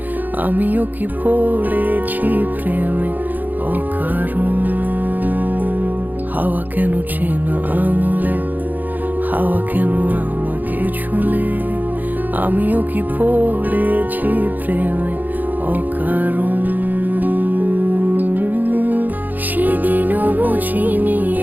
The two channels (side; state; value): left; late; 0.084 ms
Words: আমিও কি পড়েছি প্রেমে অকারণ। হাওয়া কেন চেনা আঙুলে, হাওয়া কেন আমাকে ছুলে, আমিও কি পড়েছি প্রেমে অকারণ। সেদিনও বুঝিনি